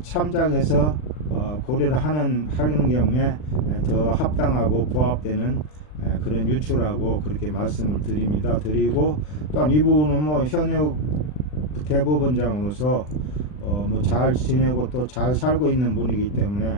참작해서 고려를 하는 경우에 더 합당하고 부합되는 그런 유추라고 그렇게 말씀을 드리고, 또한 이분은 뭐 현역 대법원장으로서 뭐 잘 지내고 또 잘 살고 있는 분이기 때문에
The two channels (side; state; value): right; late; 40 ms